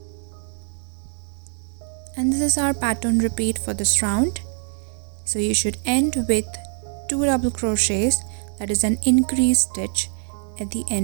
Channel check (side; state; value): left; silent; 63 dB below the other